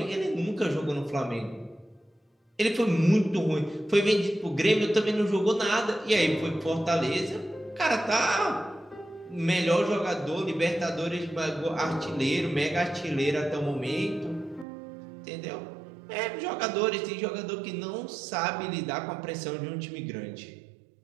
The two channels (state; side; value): drops out; left; at 14.7 s